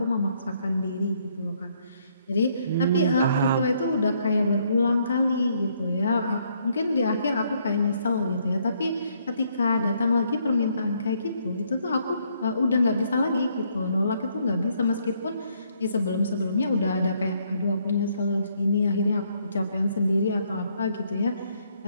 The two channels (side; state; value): both; inverted; correlation -0.70